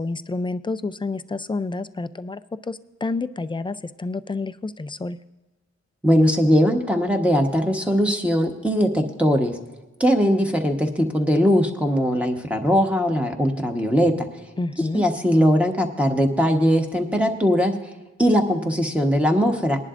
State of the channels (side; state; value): both; normal; correlation 0.84